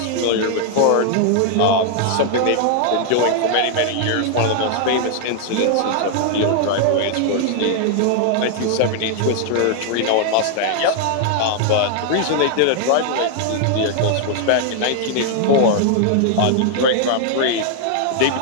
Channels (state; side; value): different; both; correlation 0.00